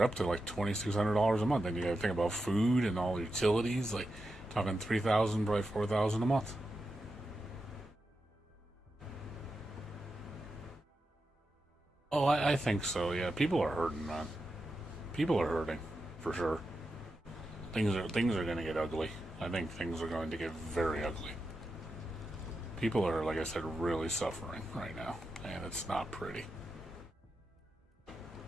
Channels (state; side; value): normal; both; correlation 0.88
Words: up to like $2,600 a month. Then you got to think about food and all the utilities, like talking $3,000, probably $4,000 a month. Oh, I think so. Yeah, people are hurting, man. People are hurting, for sure. Things are going to get ugly. I think things are going to get very ugly. People are, like I said, really suffering right now, and it's not pretty.